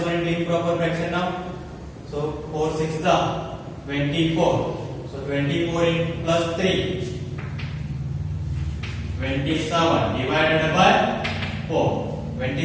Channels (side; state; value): both; identical; correlation 1.00